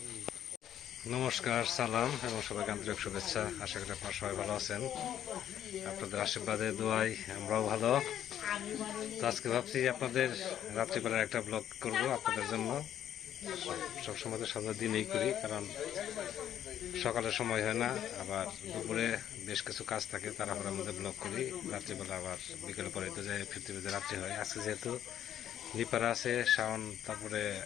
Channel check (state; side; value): quieter; right; 10.6 dB